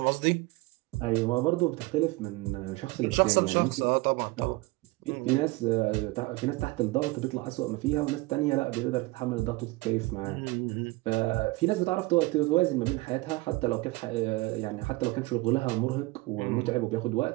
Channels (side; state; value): left; quieter; 22.1 dB